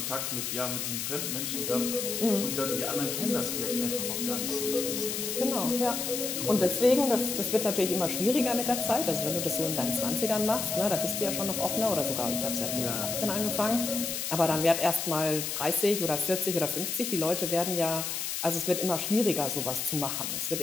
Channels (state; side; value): noise; left; hiss, 3 dB below the sound